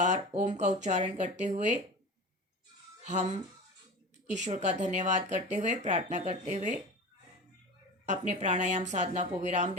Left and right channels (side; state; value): both; normal; correlation 0.32